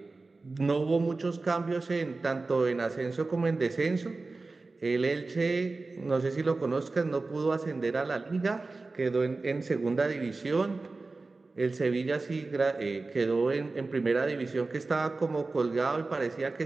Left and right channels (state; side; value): quieter; left; 3.6 dB